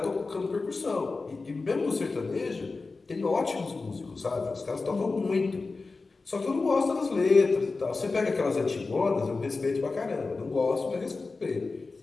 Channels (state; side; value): quieter; right; 3.9 dB